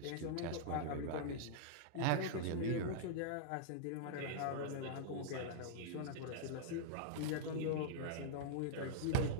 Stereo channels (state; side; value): different; both; correlation -0.02